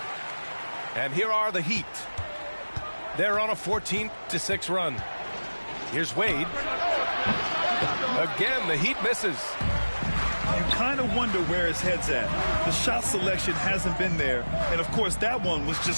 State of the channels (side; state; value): both; inverted; correlation -1.00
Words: And here are the Heat. They're on a 14-6 run. Here's Wade. Again, the Heat misses. You kind of wonder where his head's at. The shot selection hasn't been there. And, of course, that one was